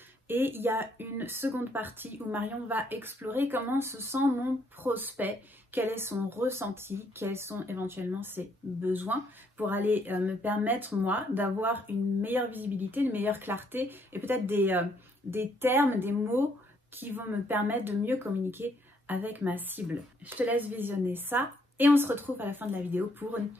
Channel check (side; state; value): both; normal; correlation 0.70